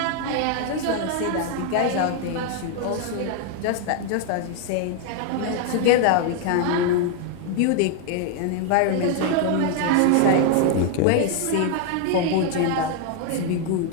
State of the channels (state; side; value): different; both; correlation 0.00